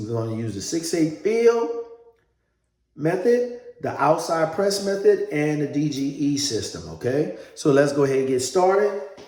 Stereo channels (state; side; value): identical; both; correlation 1.00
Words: going to use the 6/8 field method, the outside press method, and the DGE system, okay? So let's go ahead and get started.